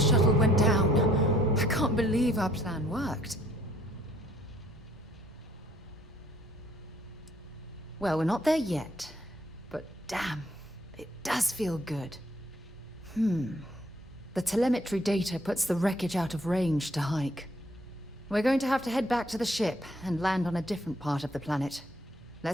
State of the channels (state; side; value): normal; both; correlation 0.63